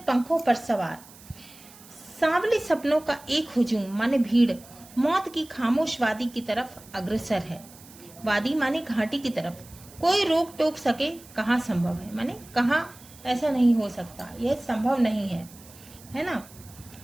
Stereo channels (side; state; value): right; noise; hiss, 21 dB below the sound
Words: पंखों पर सवार सांवले सपनों का एक हुजूम माने भीड़ मौत की खामोश वादी की तरफ अग्रसर है। वादी माने घाटी की तरफ। कोई रोक टोक सके कहाँ संभव है, माने कहाँ ऐसा नहीं हो सकता, यह संभव नहीं है ना।